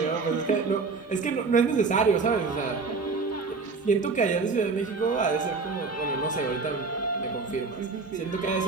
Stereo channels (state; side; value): quieter; left; 4.4 dB